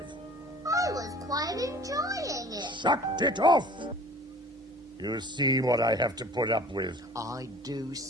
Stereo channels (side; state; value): both; normal; correlation 0.47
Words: I was quite enjoying it. Shut it off! You see what I have to put up with. I do,